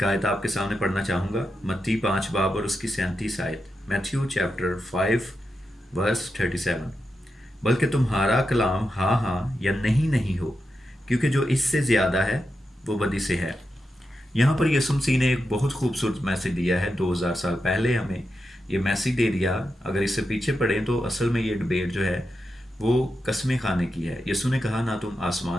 आयत आपके सामने पढ़ना चाहूँगा, मत्ती 5 बाब और उसकी 37 आयत। Matthew chapter 5 verse 37। बल्कि तुम्हारा कलाम हाँ हाँ या नहीं नहीं हो, क्योंकि जो इससे ज़्यादा है वो बदी से है। यहाँ पर यीशु मसीह ने एक बहुत खूबसूरत मैसेज दिया है। 2000 साल पहले हमें ये मैसेज दे दिया। अगर इससे पीछे पढ़ें तो असल में ये डिबेट जो है वो कसमें खाने की है। यीशु ने कहा, ना तुम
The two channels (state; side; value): normal; both; correlation 0.88